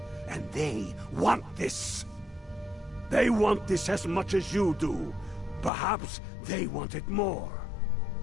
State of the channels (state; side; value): drops out; right; at 5.7 s